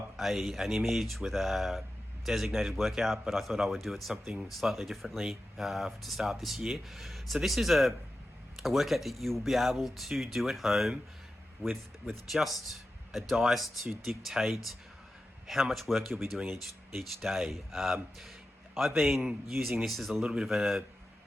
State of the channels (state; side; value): normal; both; correlation 0.92